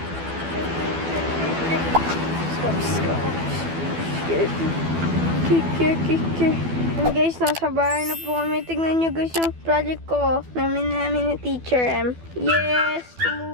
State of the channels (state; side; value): late; left; 12 ms